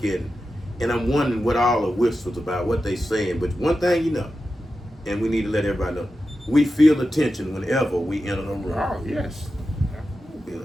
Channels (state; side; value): normal; both; correlation 0.91